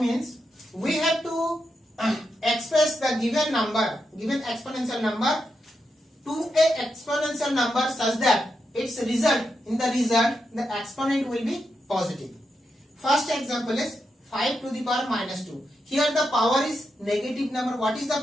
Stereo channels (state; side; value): normal; both; correlation 0.85